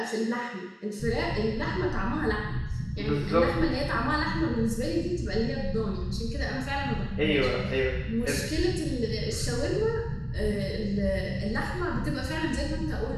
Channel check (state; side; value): identical; both; correlation 1.00